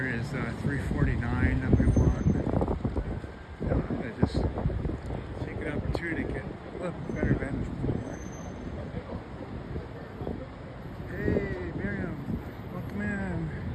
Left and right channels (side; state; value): both; identical; correlation 1.00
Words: is 349 that we want. I'm going to just take an opportunity to get a little better vantage point. Hey, Miriam, welcome in.